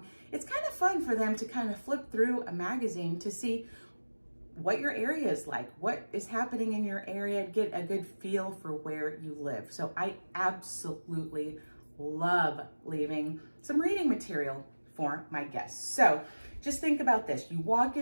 It's kind of fun for them to kind of flip through a magazine to see what your area is like, what is happening in your area, get a good feel for where you live. So I absolutely love leaving some reading material for my guests. So just think about this. You walk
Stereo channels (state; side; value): inverted; both; correlation -1.00